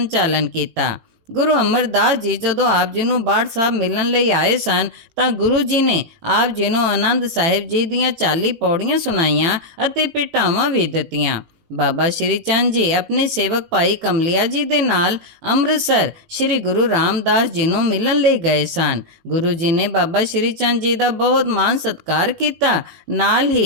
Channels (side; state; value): left; late; 18 ms